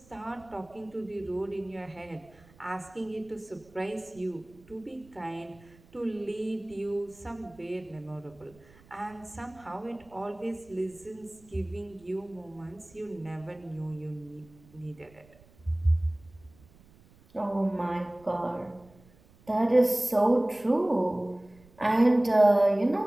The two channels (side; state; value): right; noise; rumble, 26 dB below the sound